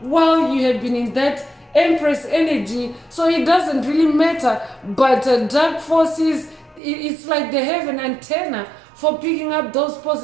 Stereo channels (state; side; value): drops out; left; at 6.8 s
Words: while you have been in that Empress energy. So it doesn't really matter. But dark forces, it's like they have an antenna for picking up those